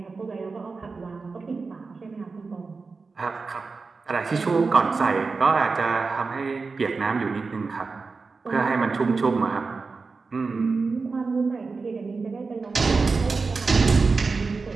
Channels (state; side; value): quieter; left; 4.3 dB